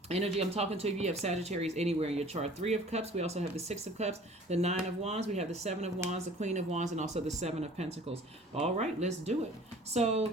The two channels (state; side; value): normal; both; correlation 0.48